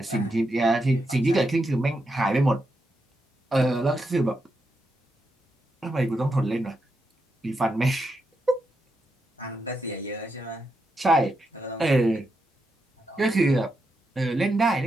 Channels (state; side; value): normal; both; correlation 0.84